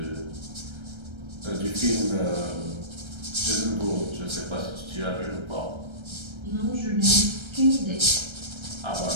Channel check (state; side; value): late; left; 1.3 ms